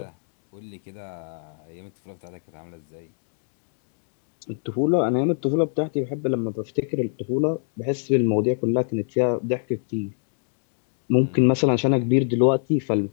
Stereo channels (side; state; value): right; silent; 62 dB below the other